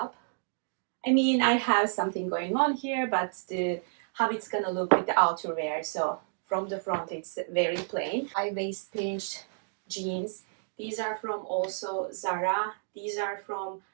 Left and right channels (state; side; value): silent; left; digital silence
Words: I mean, I have something going on here, but how it's gonna look with the outerwear. So from the front, it's very plain. High waist pinched jeans. These are from also Zara. These are from